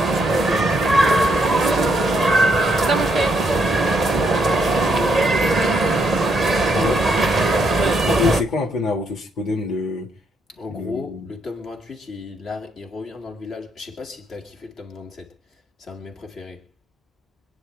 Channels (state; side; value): normal; both; correlation 0.75